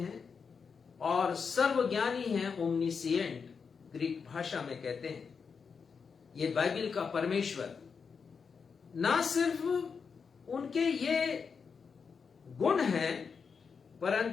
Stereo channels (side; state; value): right; quieter; 5.8 dB